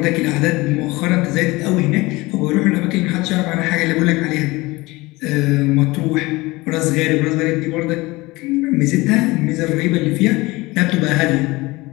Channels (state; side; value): quieter; right; 21.7 dB